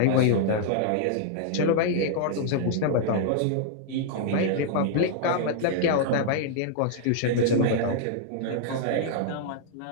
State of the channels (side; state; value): both; different; correlation -0.01